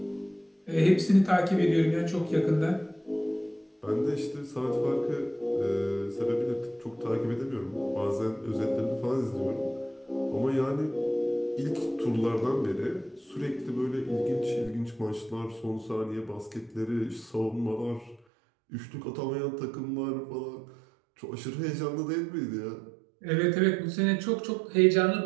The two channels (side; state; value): left; drops out; at 18.2 s